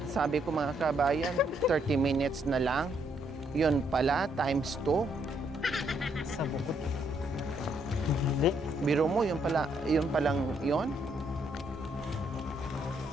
Sabi ko mga kabayan, 30 minutes na lang. Yun pala, times 2. Sa bukod. Hindi. Biro mo, yun palang yun?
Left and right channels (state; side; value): normal; both; correlation 0.73